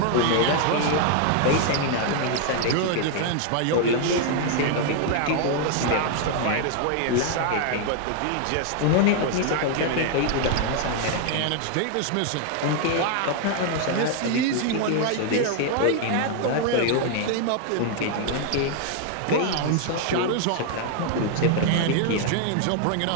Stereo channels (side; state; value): both; different; correlation 0.00